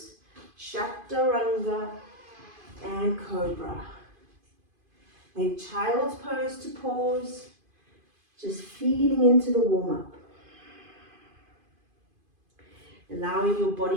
chaturanga, and cobra. Then child's pose to pause, just feeling into the warm-up. Allowing your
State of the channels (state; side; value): late; left; 2.5 ms